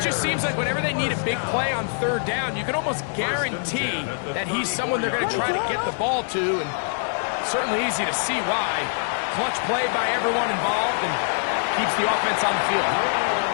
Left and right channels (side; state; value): right; silent; 63 dB below the other